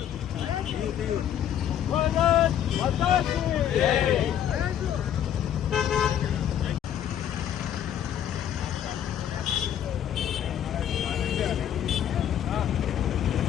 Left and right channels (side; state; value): right; quieter; 10.1 dB